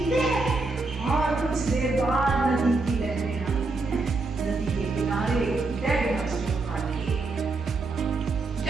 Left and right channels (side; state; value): left; quieter; 3.5 dB